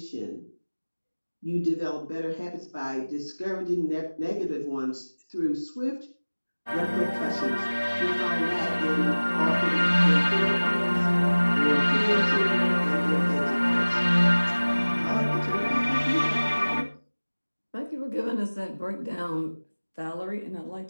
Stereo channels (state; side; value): inverted; both; correlation -1.00